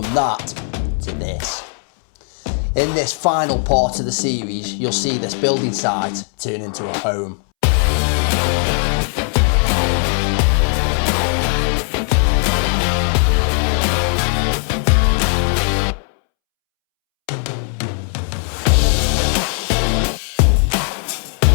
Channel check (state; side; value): silent; right; 67 dB below the other